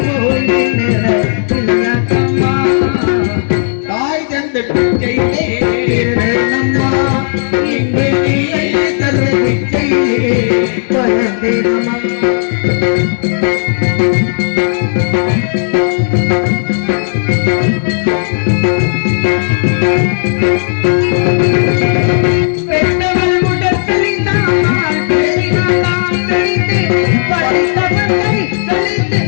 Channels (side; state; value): right; silent; digital silence